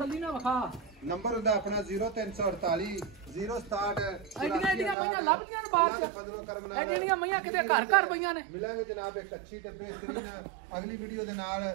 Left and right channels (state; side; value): drops out; left; at 5.0 s